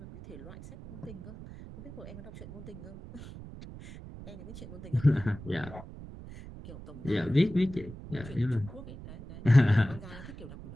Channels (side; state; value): right; noise; rumble, 14 dB below the sound